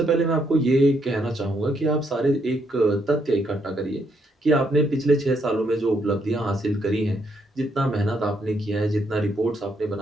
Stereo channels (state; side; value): normal; both; correlation 0.74